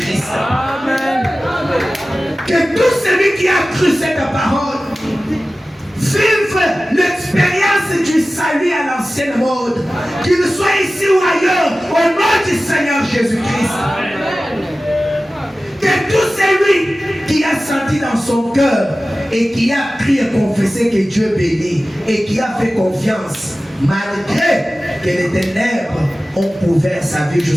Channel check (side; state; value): both; normal; correlation 0.96